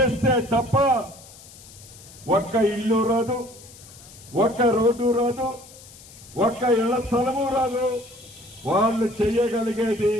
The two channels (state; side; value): noise; left; hiss, 20 dB below the sound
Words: తప్ప ఒక్క ఇల్లు రాదు, ఒక్క రోడ్డు రాదు, ఒక్క ఇళ్ల స్థలము రాదు. వాళ్ళు చేయగలిగేది